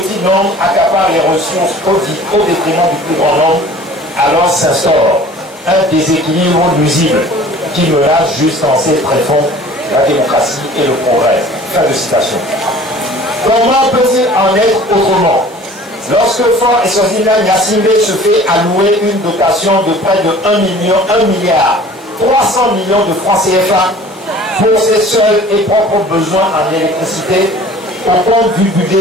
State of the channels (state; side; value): normal; both; correlation 0.47